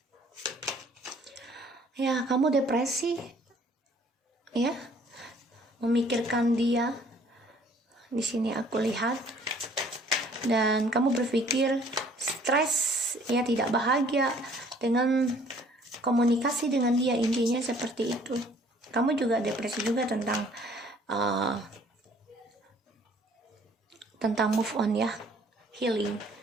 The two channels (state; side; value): normal; both; correlation 0.57